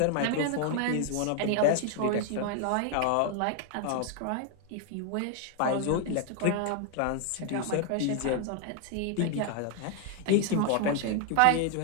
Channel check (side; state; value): both; different; correlation 0.00